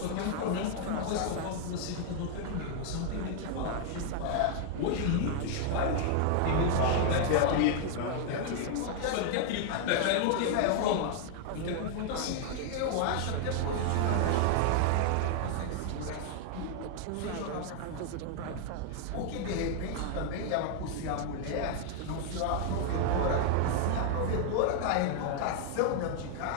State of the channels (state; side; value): different; both; correlation 0.00